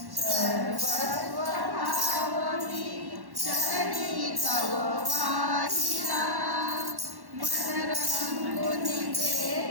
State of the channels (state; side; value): late; left; 1.1 ms